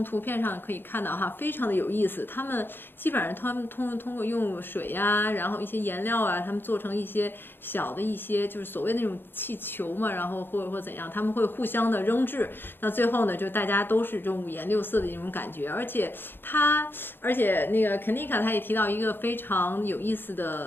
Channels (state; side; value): late; right; 0.10 ms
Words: 图片上可以看到哈，非常的有意思。他们基本上通过用水呀，然后一些颜料啊，他们做成一些小的一些就是所谓那种气球嘛，然后或怎样，他们会互相的扔掷。那最后呢，就大家都是这种五颜六色的一种感觉。而且那个 Kanika 他也提到一个非常有意思